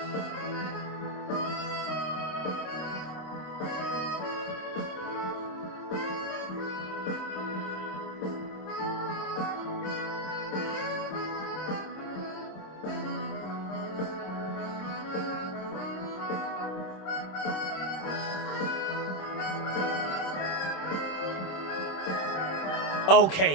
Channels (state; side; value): late; right; 26 ms